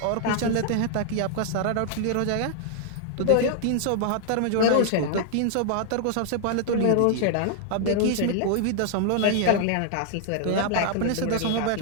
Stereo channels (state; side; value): different; both; correlation 0.00